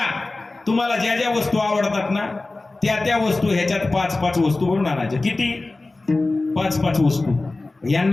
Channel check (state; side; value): quieter; right; 3.2 dB